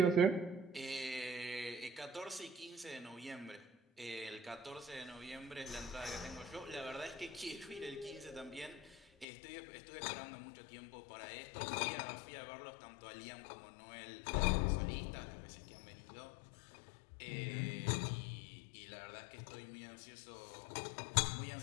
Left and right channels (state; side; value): drops out; right; at 9.2 s